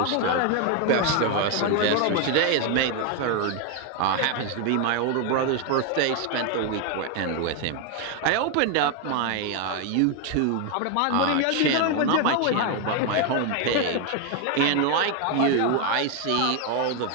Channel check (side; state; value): both; different; correlation 0.01